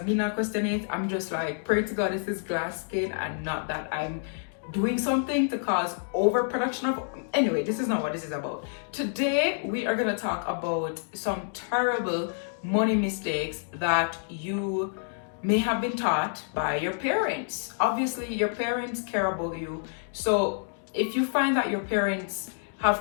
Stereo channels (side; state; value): right; silent; digital silence